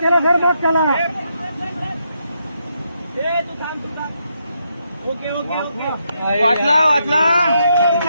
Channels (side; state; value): both; inverted; correlation -0.80